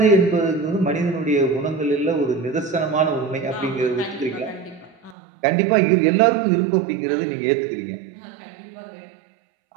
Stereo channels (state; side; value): drops out; left; at 5.2 s